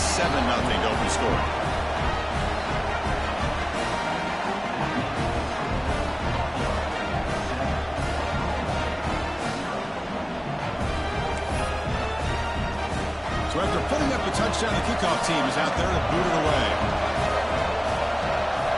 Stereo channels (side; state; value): both; identical; correlation 1.00